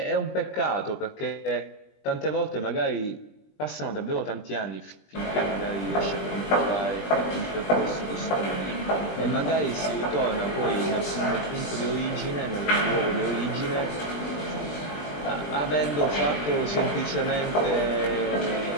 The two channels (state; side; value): late; right; 20 ms